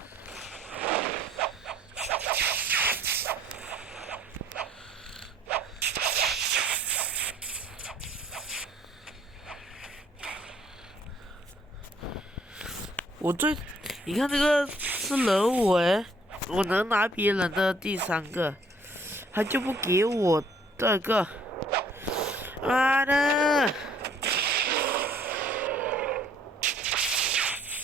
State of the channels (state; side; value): normal; both; correlation 0.60